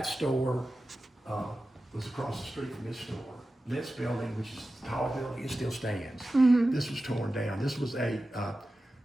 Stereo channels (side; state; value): both; normal; correlation 0.94